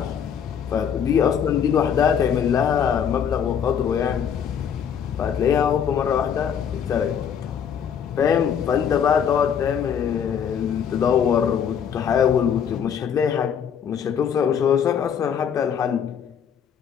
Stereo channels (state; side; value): quieter; right; 8.0 dB